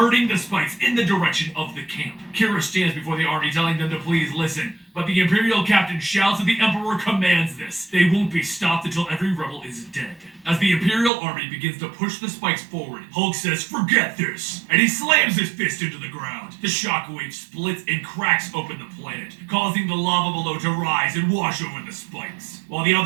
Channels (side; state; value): left; drops out; at 11.1 s